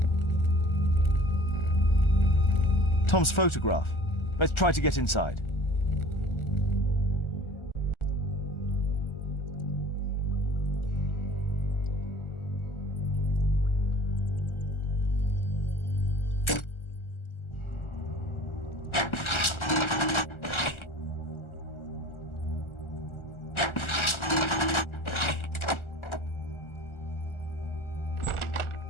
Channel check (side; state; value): right; late; 1.4 ms